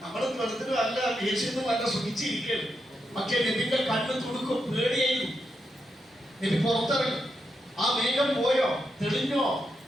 വെള്ളത്തിനും അല്ല ദേഷ്യൊന്നും അല്ല സുഖിച്ചിരിക്കുകയാണ്. പക്ഷേ നബിന്റെ കണ്ണ് തുടുക്കും, പേടിയായിരുന്നു. നബി പുറത്തിറങ്ങി, ആ മേഘം പോയോ, തെളിഞ്ഞോ?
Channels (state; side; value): normal; both; correlation 0.84